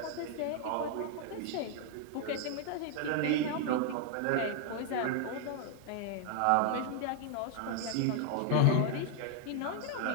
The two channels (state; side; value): different; both; correlation 0.00